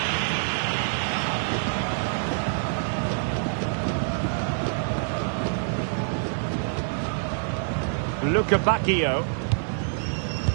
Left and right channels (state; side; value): silent; left; digital silence